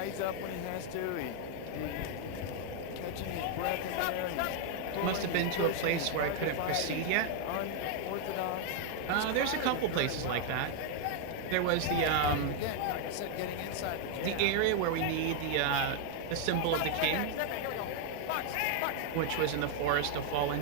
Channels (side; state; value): both; different; correlation 0.00